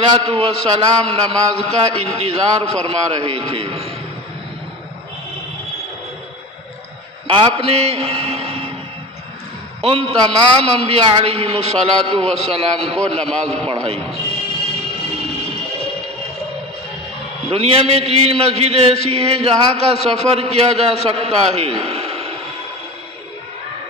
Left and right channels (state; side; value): normal; both; correlation 0.32